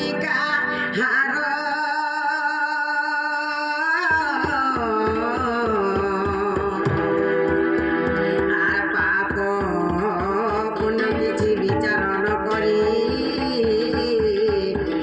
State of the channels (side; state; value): both; identical; correlation 1.00